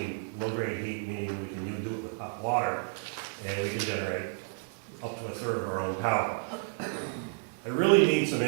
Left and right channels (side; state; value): left; silent; digital silence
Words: Low-grade heat meaning we can do it with hot water, and we can generate up to a third of our own power. I really need some